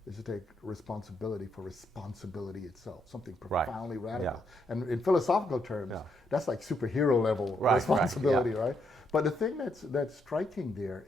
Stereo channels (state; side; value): normal; both; correlation 0.76